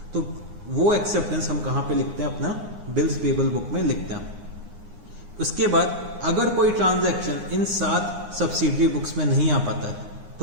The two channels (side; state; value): left; late; 9.7 ms